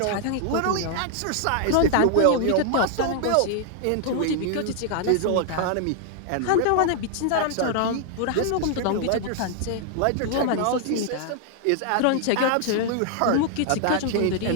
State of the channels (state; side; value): different; both; correlation 0.00